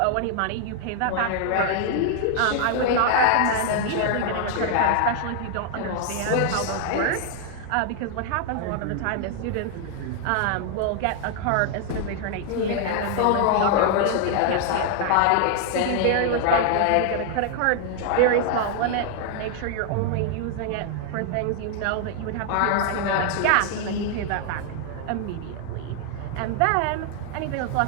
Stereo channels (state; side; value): different; both; correlation 0.00